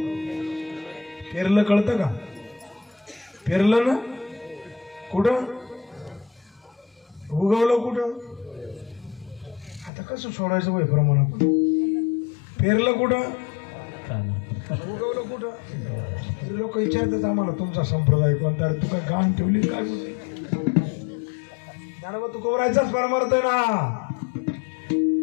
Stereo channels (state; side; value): drops out; right; at 9.9 s